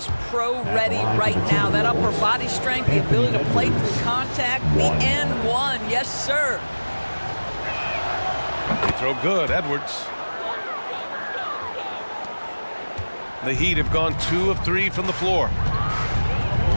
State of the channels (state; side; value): inverted; both; correlation -1.00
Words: pro-ready right now. That upper body strength, the ability to play through contact, the N1, yes, sir. They throw good, Edwards. The Heat have gone 2 of 3 from the floor.